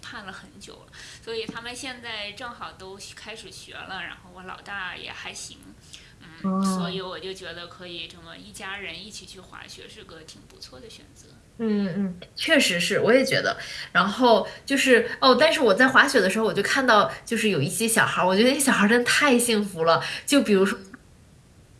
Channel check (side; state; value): both; identical; correlation 1.00